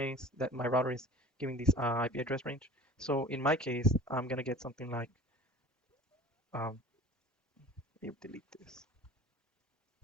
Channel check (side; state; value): both; normal; correlation 0.42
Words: that my router is giving this IP address range. So in my case, I'm gonna get something like, you delete this.